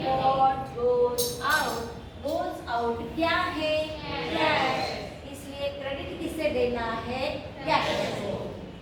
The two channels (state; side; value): identical; both; correlation 1.00